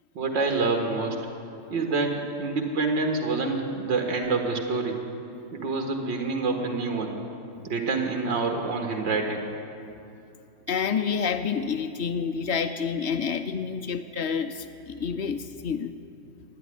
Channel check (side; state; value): left; late; 3.1 ms